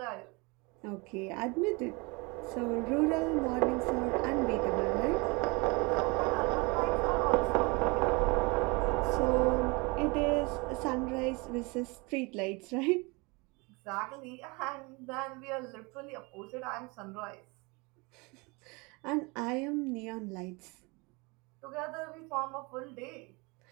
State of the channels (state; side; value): quieter; left; 27.6 dB